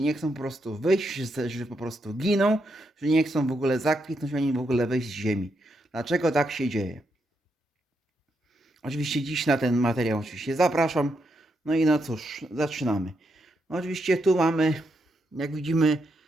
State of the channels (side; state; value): both; normal; correlation 0.81